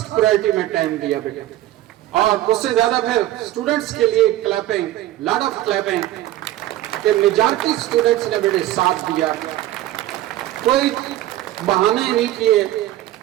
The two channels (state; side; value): quieter; left; 14.6 dB